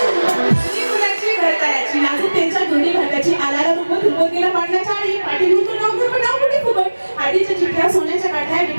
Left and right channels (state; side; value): inverted; both; correlation -1.00